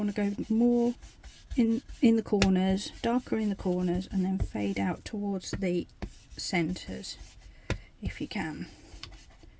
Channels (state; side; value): identical; both; correlation 1.00